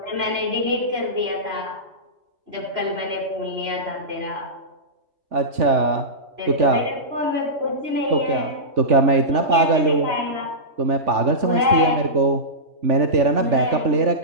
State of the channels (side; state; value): left; late; 3.4 ms